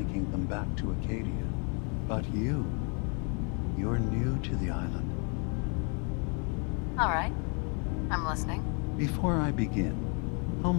them back to Acadia. But you're new to the island. All right. I'm listening. Before I begin, how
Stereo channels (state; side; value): quieter; right; 36.7 dB